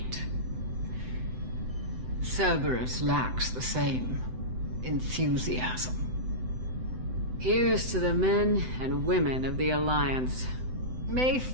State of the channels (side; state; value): left; late; 7.9 ms